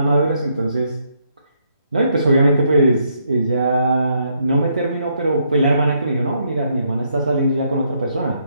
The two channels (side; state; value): both; inverted; correlation -0.74